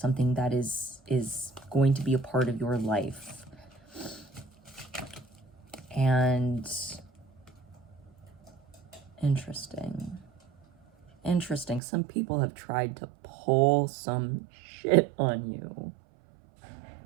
that is going to be a part of your life. And interesting. Some people have tried to pull some shit on you.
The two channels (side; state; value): left; drops out; at 11.8 s